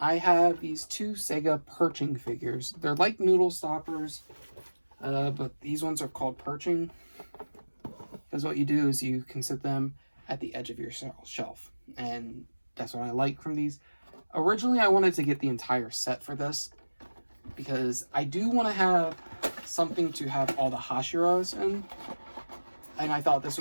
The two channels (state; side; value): inverted; both; correlation -1.00